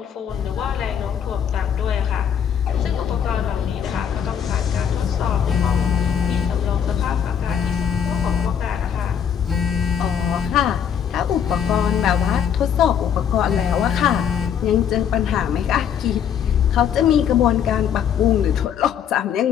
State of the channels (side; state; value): right; quieter; 8.3 dB